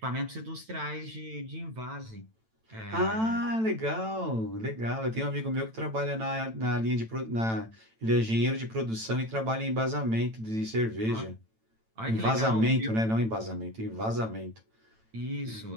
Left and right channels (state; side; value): late; left; 9.0 ms